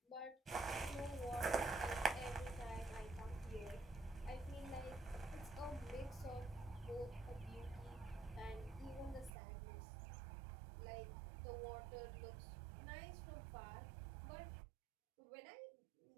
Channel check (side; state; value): left; drops out; at 9.3 s